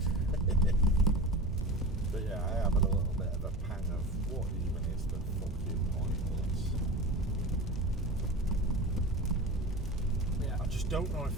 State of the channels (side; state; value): right; noise; hum, 13 dB below the sound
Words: But yeah, I have a little bit of a pang of what even is the fucking point of this. Yeah. I just don't know